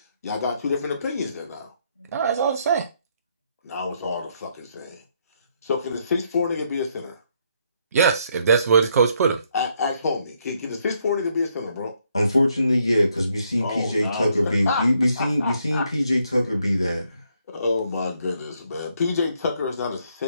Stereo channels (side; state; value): both; inverted; correlation -0.73